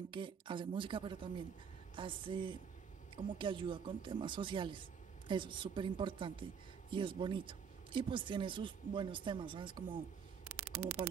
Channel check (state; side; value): quieter; left; 6.8 dB